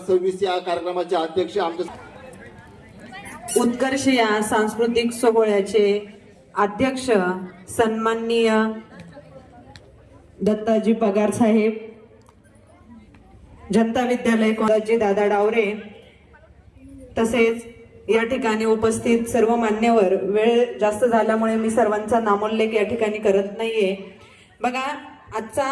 या कार्यक्रमाचे अध्यक्ष आमचे उत्कर्ष या सांस्कृतिक सोहळ्याचे अध्यक्ष सन्माननीय दत्ताजी पगार साहेब, जनता विद्यालय कोळंबे दादा डावरे, तसेच या ठिकाणी उपस्थित सर्व मान्यवर। वेळ जास्त झाल्यामुळे मी सर्वांचा नामोल्लेख या ठिकाणी करत नाहीये। बघा, आजचा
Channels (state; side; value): identical; both; correlation 1.00